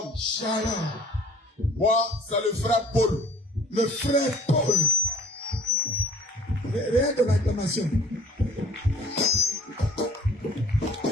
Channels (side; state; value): both; normal; correlation 0.51